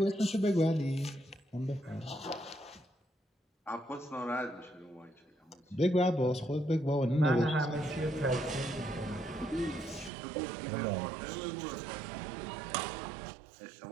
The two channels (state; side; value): drops out; left; at 10.1 s